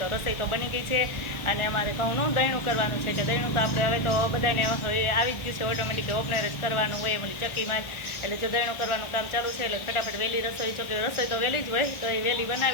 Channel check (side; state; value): right; late; 1.4 ms